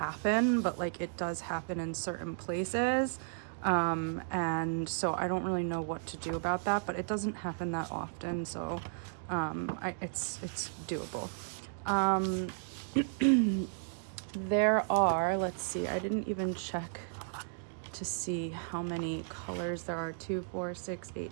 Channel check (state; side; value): silent; left; digital silence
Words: but like it does happen in certain places, and so I don't really know what to do about that, but it doesn't happen that often, so it's doable. There are, let's see, I didn't even check to see how many colors there are. 2, 4, 6,